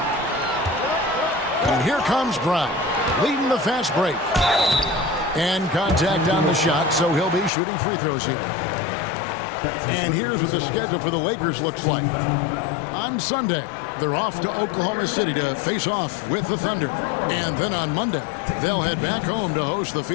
And here comes Brown, leading the fast break. And contact on the shot, so he'll be shooting free throws here. And here's what the schedule for the Lakers looks like. On Sunday, they're off to Oklahoma City to face off with the Thunder. And then on Monday, they'll head back home to host the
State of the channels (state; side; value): drops out; right; at 7.5 s